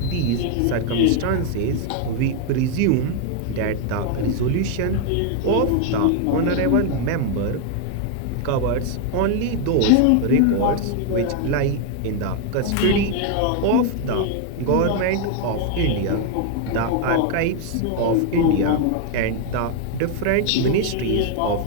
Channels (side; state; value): both; different; correlation 0.01